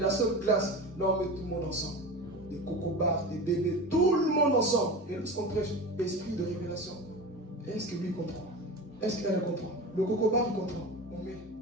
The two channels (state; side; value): normal; both; correlation 0.29